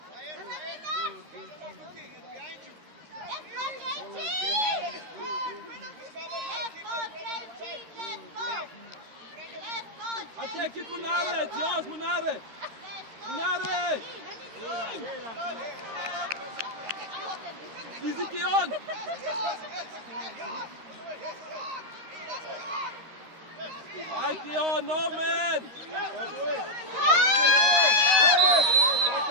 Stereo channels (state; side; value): late; left; 13 ms